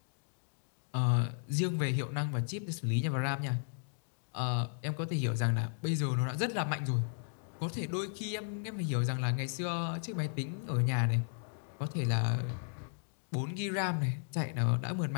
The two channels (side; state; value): right; silent; digital silence